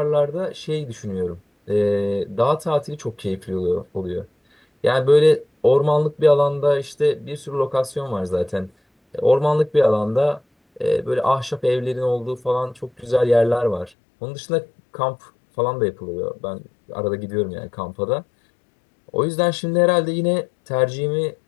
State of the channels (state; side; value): drops out; right; at 13.9 s